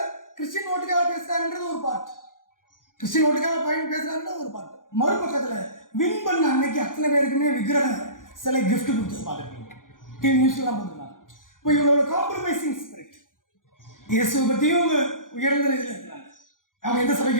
கிறிஸ்டியன் ஓட்டுக்காக பேசுகிறாருன்றது ஒரு பார்ட், கிறிஸ்டியன் ஓட்டுக்காக பாயிண்ட் பேசுகிறாருன்றது ஒரு பார்ட். மறுபக்கத்தில் வின் பண்ண அன்னைக்கு அத்தனை பேருக்குமே விக்கிரக சிலை கிஃப்ட் கொடுத்தது பார்த்துருக்கீங்க, டிவி நியூஸ்லாம் போட்டுருக்காங்க. இப்போ இவங்களோட காம்ப்ரமைசிங் ஸ்பிரிட். இயேசுவை பற்றியும் அவங்க உயர்ந்த இதில் இருக்கிறாங்க. அவங்க எந்த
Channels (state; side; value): late; right; 0.89 ms